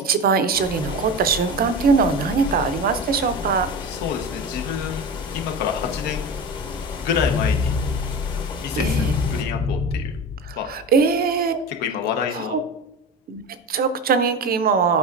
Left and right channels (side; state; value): both; normal; correlation 0.28